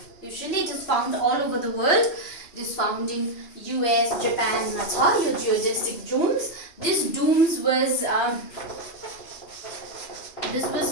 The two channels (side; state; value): right; late; 2.8 ms